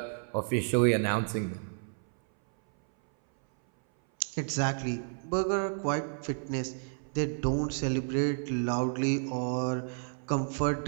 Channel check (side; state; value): left; silent; 57 dB below the other